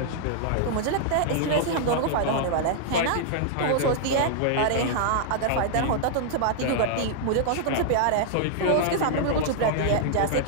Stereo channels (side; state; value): both; different; correlation -0.01